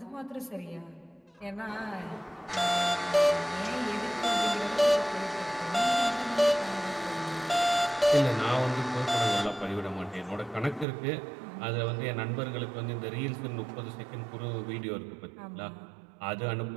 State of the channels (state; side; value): drops out; left; at 10.9 s